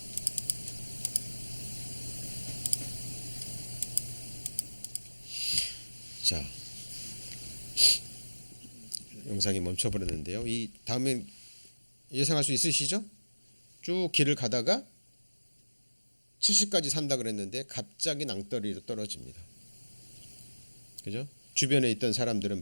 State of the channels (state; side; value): inverted; both; correlation -1.00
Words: 자, 영상이 멈춰버렸는데요. 이 다음에 예상할 수 있으시죠? 쭉 길을 가다가 70까지 산다 그랬는데 갑자기 낭떠러리로 떨어집니다. 그죠? 주변에 있던 사람들은